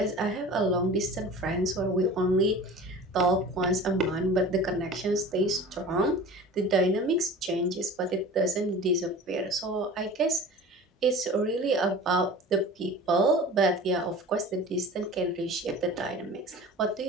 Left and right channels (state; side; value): normal; both; correlation 0.39